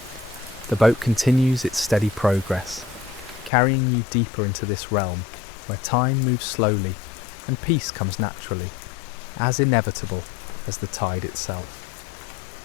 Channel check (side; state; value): right; drops out; at 3.5 s